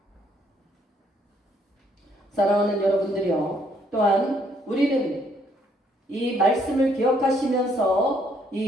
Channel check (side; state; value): both; normal; correlation 0.68